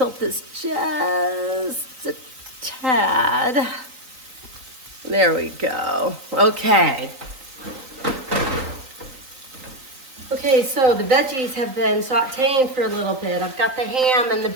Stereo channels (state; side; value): late; left; 3.9 ms